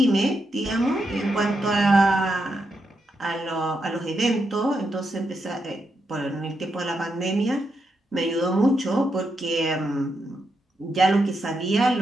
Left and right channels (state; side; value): normal; both; correlation 0.83